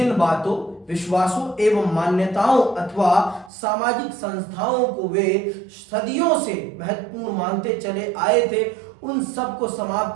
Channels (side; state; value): left; drops out; at 3.5 s